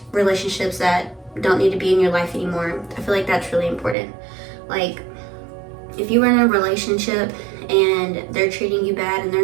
relationships that don't need to be in your life anymore. I feel like that's really important. Like, if you were in a relationship and they're treating you bad and they're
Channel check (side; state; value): left; drops out; at 4.0 s